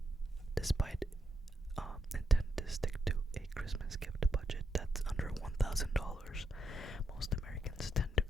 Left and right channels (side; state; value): both; normal; correlation 0.79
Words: Despite intend to stick to a Christmas gift budget that's under $1,000, most Americans tend to